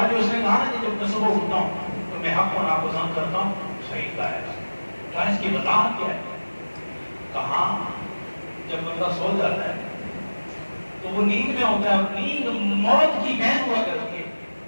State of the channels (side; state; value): both; inverted; correlation -1.00